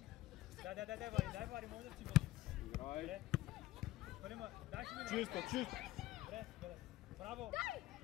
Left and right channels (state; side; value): quieter; right; 16.3 dB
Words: Дай, Вари, може да си Играй! дай си мине. Чисто, чисто! Добре, браво!